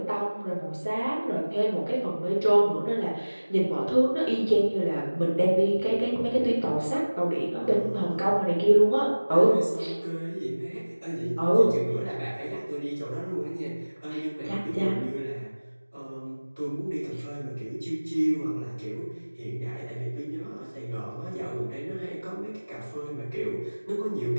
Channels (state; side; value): inverted; both; correlation -1.00